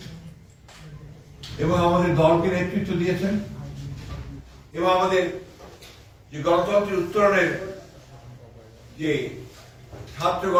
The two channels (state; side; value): identical; both; correlation 1.00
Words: এবং আমাদের দলকে নেতৃত্ব দিয়েছেন এবং আমাদের যে গণতন্ত্রের উত্তরণের যে ছাত্র